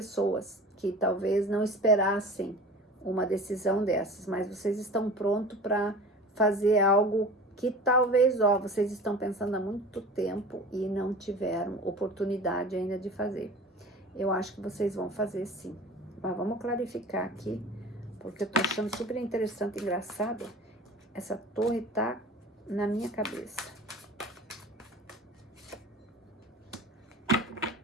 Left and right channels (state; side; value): normal; both; correlation 0.38